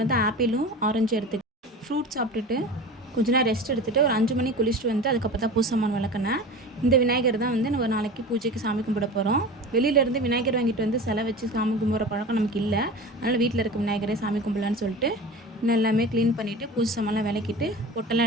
வந்து ஆப்பிளும் ஆரஞ்சும் எடுத்துக்கிட்டேன். ஃப்ரூட்ஸ் சாப்பிட்டுட்டு கொஞ்ச நேரம் ரெஸ்ட் எடுத்துகிட்டு ஒரு 5 மணிக்கு குளிச்சுட்டு வந்து அதுக்கப்புறம் தான் பூஜை சாமான் விளக்குனேன். இந்த விநாயகர் தான் வந்து நம்ம நாளைக்கு பூஜைக்கு சாமி கும்பிட போகிறோம். வெளியிலேருந்து விநாயகர் வாங்கிட்டு வந்து சிலை வச்சு சாமி கும்பிட்ற பழக்கம் நமக்கு இல்லை. அதனால் வீட்டில் இருக்க விநாயகரே சாமி கும்பிடலான்னு சொல்லிட்டு இன்னும் எல்லாமே க்ளீன் பண்ணிவிட்டு பூஜை சாமான்லாம் விளக்கிட்டு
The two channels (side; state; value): both; normal; correlation 0.33